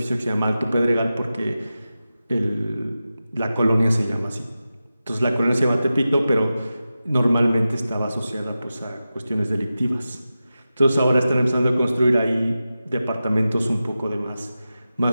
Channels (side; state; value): both; inverted; correlation -0.93